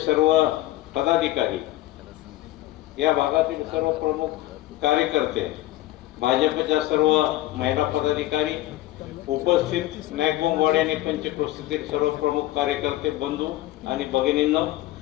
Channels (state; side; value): quieter; right; 16.1 dB